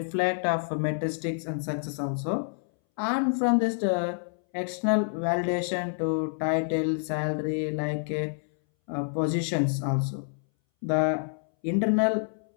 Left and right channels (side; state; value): right; silent; 59 dB below the other